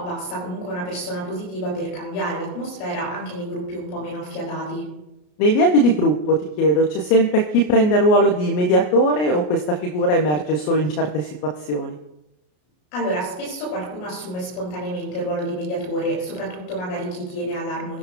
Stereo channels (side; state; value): right; late; 33 ms